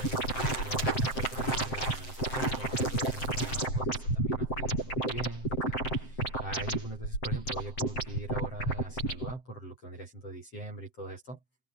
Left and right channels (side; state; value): right; late; 7.7 ms